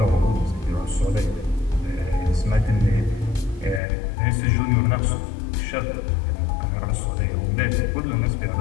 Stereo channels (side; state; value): right; drops out; at 3.8 s